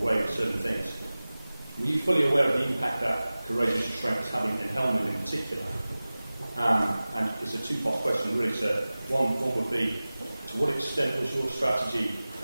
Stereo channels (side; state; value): both; inverted; correlation -0.98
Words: with certain things. Were you fully aware of the impact that courageous restraint was having in Helmand in particular? And it's a two-part question really, sir. One would be, to what extent was your strategy